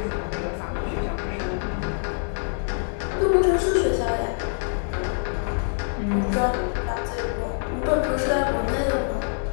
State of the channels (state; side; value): silent; right; 62 dB below the other